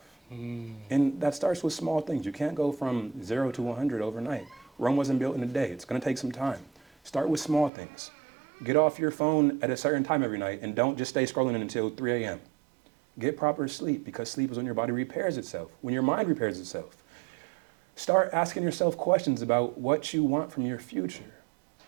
And that starts with small things. You can't go from 0 to 100 overnight. Rome wasn't built in a day. It's going to take some time. Start with small things. Get off your phone at a certain time every night and don't just stay scrolling until 3 a.m. Get proper sleep, because sleep is when your body repairs itself, when your mind repairs itself. Start asking yourself questions about what you want from your future.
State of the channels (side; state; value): left; drops out; at 7.7 s